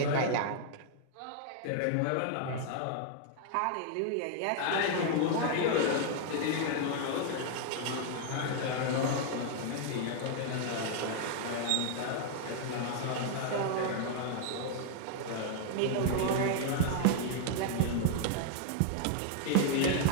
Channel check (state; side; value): different; both; correlation -0.01